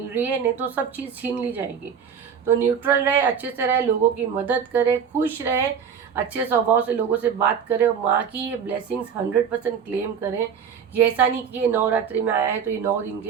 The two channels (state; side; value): quieter; left; 7.3 dB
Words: रही है, नहीं तो सब चीज़ छीन ली जाएगी। तो न्यूट्रल रहे, अच्छे से रहे, लोगों की मदद करें, खुश रहे, अच्छे स्वभाव से लोगों से बात करें और माँ की ये ब्लेसिंग्स 100% क्लेम करें। ये ऐसा नहीं कि ये नवरात्रि में आया है तो ये 9 दिन